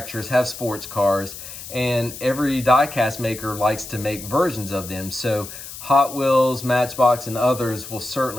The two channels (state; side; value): noise; left; hiss, 12 dB below the sound